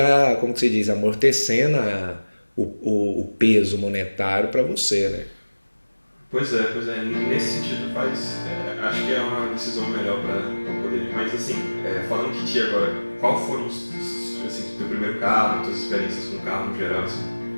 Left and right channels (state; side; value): inverted; both; correlation -1.00